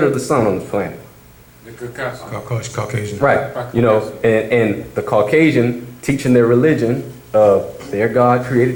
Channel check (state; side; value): identical; both; correlation 1.00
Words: of the sun on this planet? The Caucasian. Right. And the Caucasian teaching their religion of their God